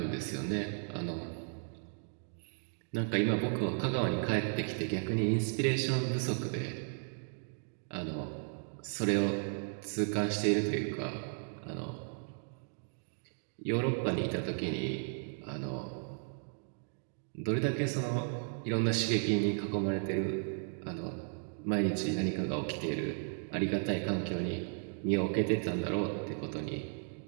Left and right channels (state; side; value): silent; left; 54 dB below the other